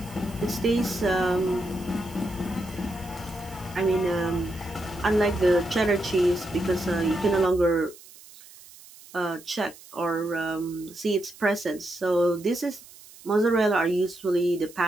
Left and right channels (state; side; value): noise; right; hiss, 21 dB below the sound